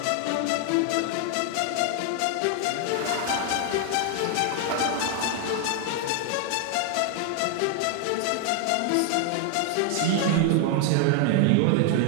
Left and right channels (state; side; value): different; both; correlation 0.00